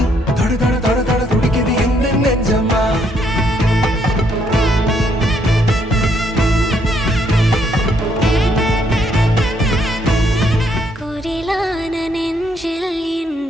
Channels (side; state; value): both; normal; correlation 0.71